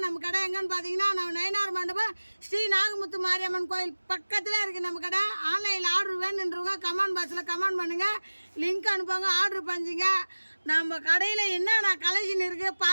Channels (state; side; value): inverted; both; correlation -1.00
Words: நம்ம கடை எங்கன்னு பார்த்தீங்கன்னா நம்ம நயினார் மண்டபம் ஸ்ரீ நாகமுத்து மாரியம்மன் கோயில் பக்கத்தில் இருக்குது நம்ம கடை. ஆன்லைனில் ஆர்டர் வேணுன்றவங்க கமெண்ட் பாக்ஸில் கமெண்ட் பண்ணுங்கள், லிங்க் அனுப்புங்க, ஆர்டர் பண்ணிங்க. நம்ம கடையில் என்னென்ன கலெக்ஷன் இருக்குது